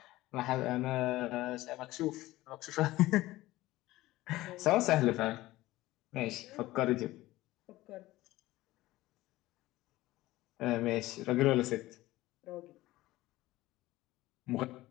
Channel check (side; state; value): right; quieter; 17.5 dB